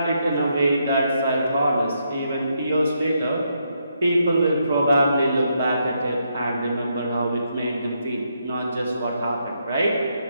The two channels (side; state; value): both; inverted; correlation -0.78